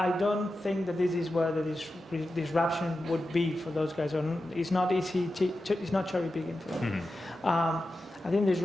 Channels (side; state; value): both; normal; correlation 0.92